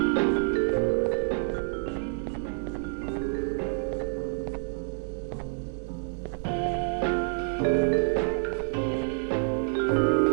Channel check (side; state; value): left; silent; 59 dB below the other